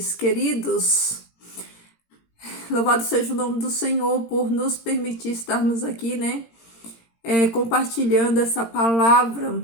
queridos. Louvado seja o nome do Senhor por nos permitir estarmos aqui, né? Compartilhando essa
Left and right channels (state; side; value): late; right; 17 ms